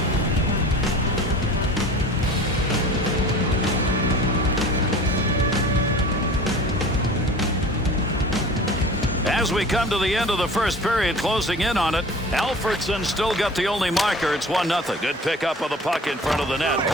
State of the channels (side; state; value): both; normal; correlation 0.41